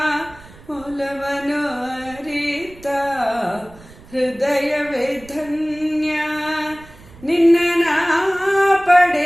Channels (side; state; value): right; noise; rumble, 22 dB below the sound